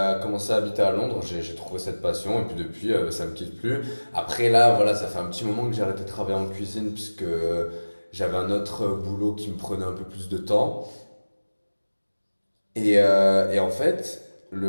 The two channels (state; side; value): inverted; both; correlation -1.00